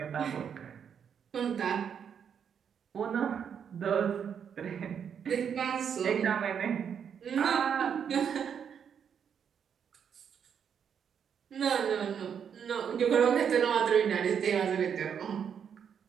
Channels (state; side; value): quieter; left; 7.7 dB